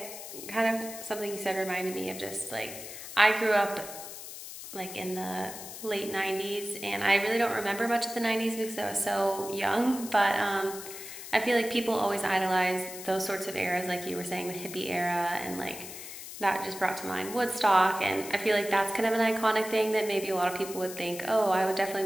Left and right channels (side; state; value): left; noise; hiss, 11 dB below the sound